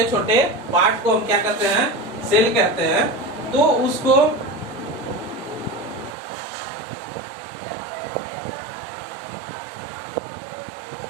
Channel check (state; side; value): drops out; left; at 6.2 s